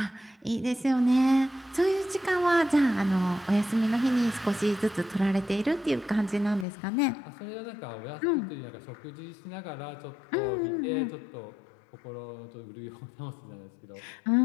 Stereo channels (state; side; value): drops out; right; at 6.7 s